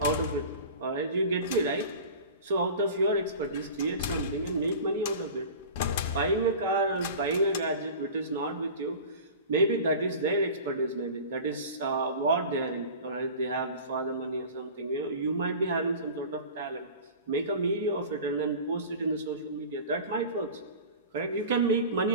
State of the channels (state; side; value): inverted; both; correlation -0.37